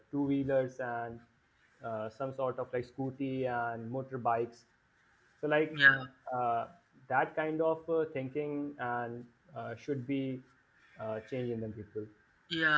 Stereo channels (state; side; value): identical; both; correlation 1.00